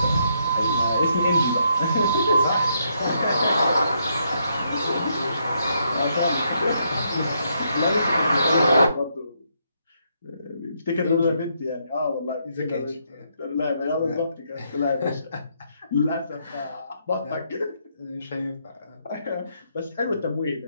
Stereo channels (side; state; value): both; inverted; correlation -0.75